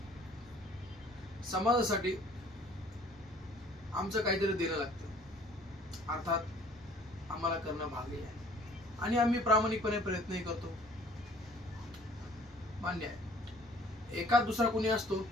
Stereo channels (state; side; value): normal; both; correlation 0.54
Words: समाजासाठी आमचं काहीतरी देणं लागतं, अर्थात आम्हाला करणं भाग आहे आणि आम्ही प्रामाणिकपणे प्रयत्नही करतो. मान्य आहे, एखाद दुसरा कोणी असतो